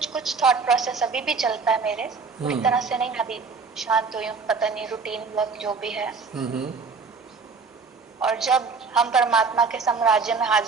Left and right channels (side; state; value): left; quieter; 4.8 dB